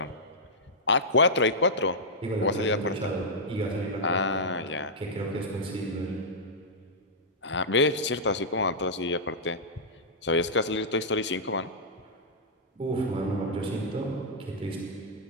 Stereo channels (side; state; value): both; normal; correlation -0.11